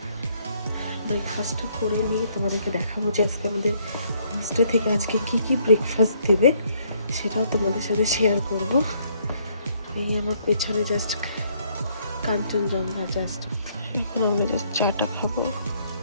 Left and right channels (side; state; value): both; inverted; correlation -0.68